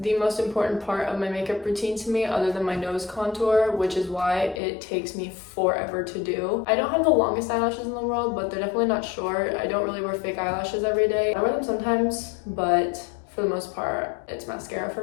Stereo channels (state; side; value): drops out; right; at 4.6 s